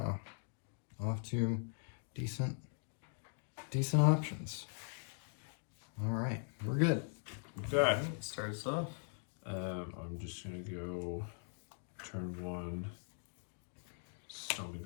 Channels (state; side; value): silent; right; 51 dB below the other